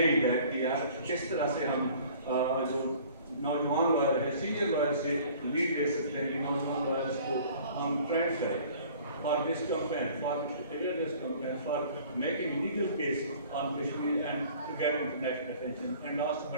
that کہ یار کس طرح سے ہم جو نوجوان لائر ہے, سینئر لائر سے لیڈ لے سکتے ہیں کہ نوجوان لائرس کو ہم ٹرینڈ کریں for this campaign, for awareness campaign, for making legal case on Kashmir and to get international attention. And last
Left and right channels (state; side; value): inverted; both; correlation -0.50